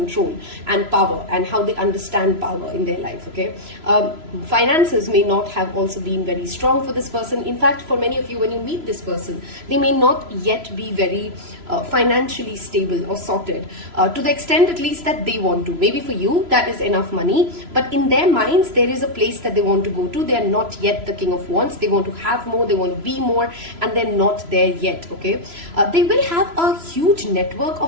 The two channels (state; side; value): late; left; 3.0 ms